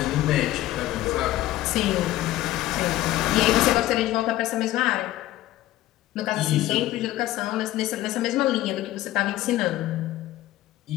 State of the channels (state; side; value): quieter; right; 15.3 dB